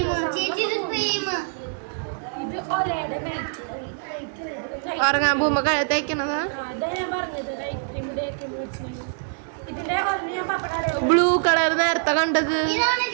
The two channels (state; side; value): silent; left; digital silence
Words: ഇത് ഒലയുടെ നൈറ്റ് ഉറങ്ങാൻ പോകുമ്പോ തേക്കണതാ. അതാ ഞാൻ പറഞ്ഞത് നൈറ്റ് ക്രീം ഡേ ക്രീം മേടിച്ചിട്ടുണ്ടെങ്കിൽ ഇതിന്റെ ഒരെണ്ണം ഞാൻ പപ്പട ബ്ലൂ കളർ നേരത്തെ കണ്ടത്